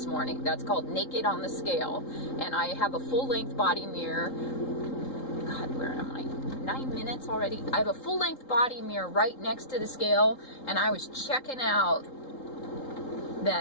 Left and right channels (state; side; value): late; right; 3.8 ms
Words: morning. That's called Naked on the Scale. And I have a full-length body mirror. God, where am I? 9 minutes already? I have a full-length body mirror right next to the scale, and I was checking out